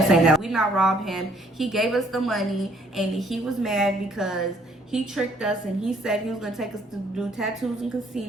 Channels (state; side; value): normal; both; correlation 0.63